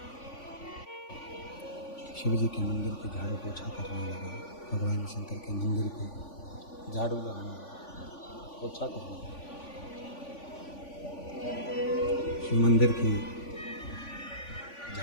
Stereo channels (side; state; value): right; late; 3.5 ms